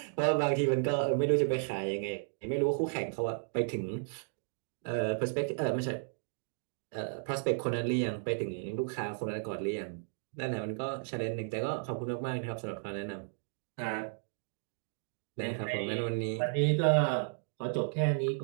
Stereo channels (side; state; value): left; silent; digital silence